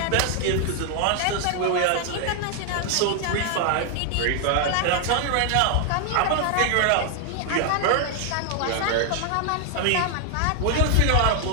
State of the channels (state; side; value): different; both; correlation 0.00